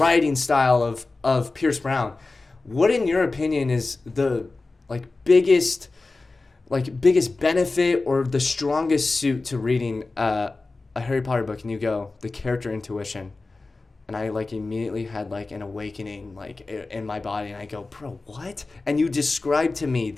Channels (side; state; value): right; quieter; 3.5 dB